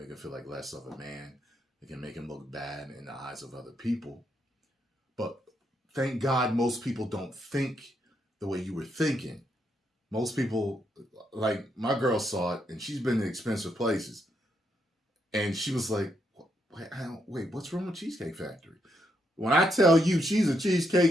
him feel like less of a man. It can make him look bad in the eyes of other people. But thank God most people don't think the way you were thinking. Most people, like my girl saw it, and she's been in expensive places. And she was like, wait, what's wrong with Cheesecake Factory? When I tell you she's a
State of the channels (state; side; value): normal; both; correlation 0.78